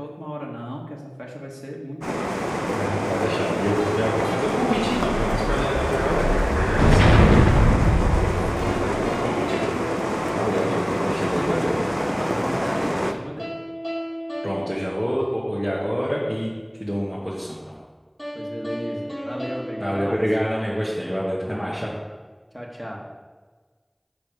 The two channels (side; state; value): both; identical; correlation 1.00